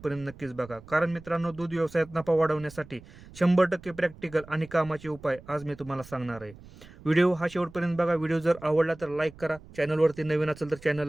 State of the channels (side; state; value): right; noise; rumble, 20 dB below the sound